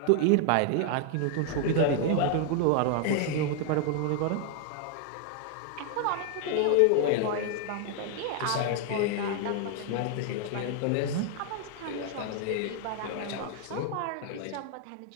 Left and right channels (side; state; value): both; different; correlation 0.00